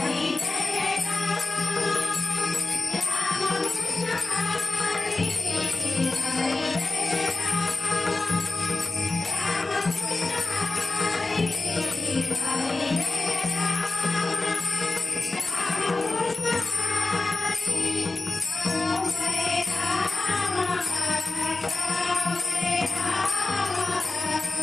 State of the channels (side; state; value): right; quieter; 3.3 dB